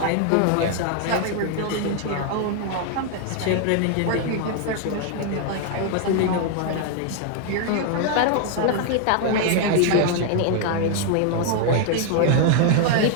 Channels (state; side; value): different; both; correlation 0.00